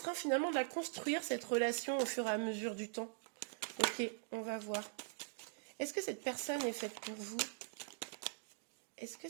finalement de la construire, cette relation, au fur et à mesure du temps. Ok, on va voir. Est-ce que cette personne est faite pour vous? Est-ce que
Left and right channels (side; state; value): left; silent; digital silence